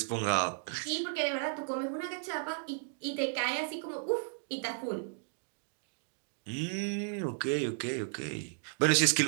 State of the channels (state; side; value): silent; left; digital silence